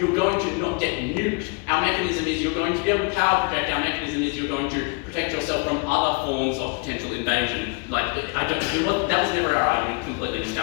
going to not get nuked. Our mechanism is you're going to be able to power project. Our mechanism is you're going to protect yourself from other forms of potential invasion. Like, that was never our argument. Completely missed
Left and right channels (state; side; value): quieter; right; 32.8 dB